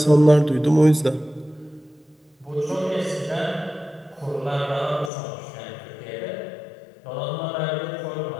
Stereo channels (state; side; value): drops out; right; at 5.1 s